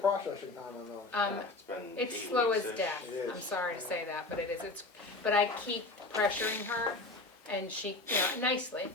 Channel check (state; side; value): quieter; right; 3.1 dB